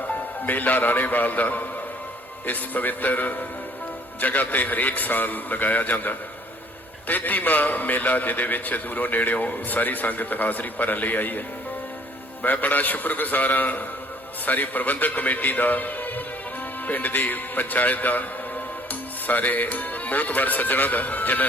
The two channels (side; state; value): both; normal; correlation 0.57